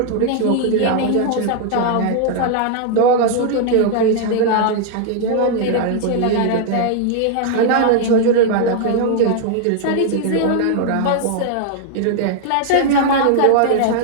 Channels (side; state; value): both; different; correlation -0.01